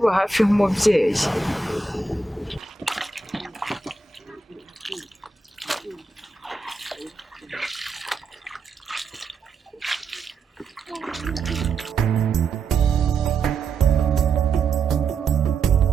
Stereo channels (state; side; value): quieter; left; 4.1 dB